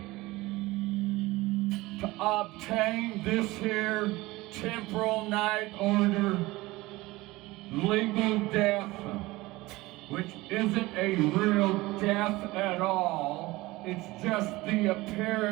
to obtain this here temporal night order, legal death, which isn't a real death at all. It's just the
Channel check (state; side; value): quieter; left; 20.1 dB